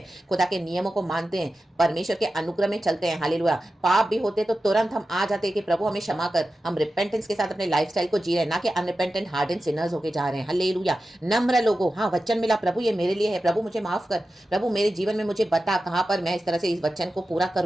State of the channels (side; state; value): both; normal; correlation 0.93